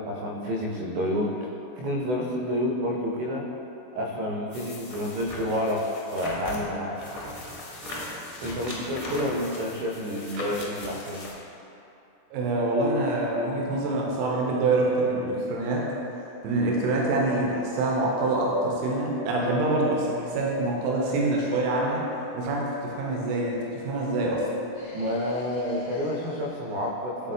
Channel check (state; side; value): late; left; 24 ms